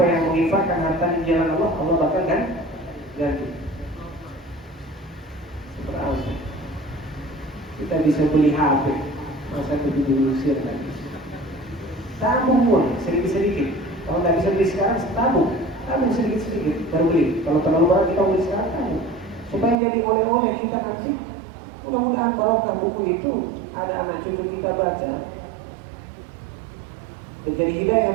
yang menginfakkan harta di jalan Allah, Allah bakal ganti. Seberapa? Kita bisa beli HP, masa begitu diusir lagi. Tabung pun sedikit-sedikit. Kalau nggak bisa beli sekarang, tabung sedikit-sedikit baru beli. Kalau terlalu banyak kita beli sekarang, tabung. Supaya jadi oleh-oleh kita nanti. Mudah-mudahan barokah buku itu ada anak cucu kita baca, jadi hidayah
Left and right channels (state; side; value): drops out; left; at 19.8 s